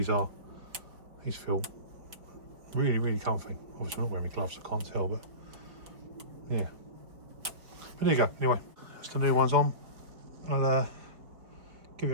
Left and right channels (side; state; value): left; late; 4.6 ms